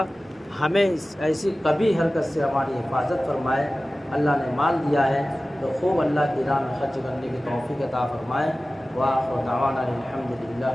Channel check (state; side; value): normal; both; correlation 0.96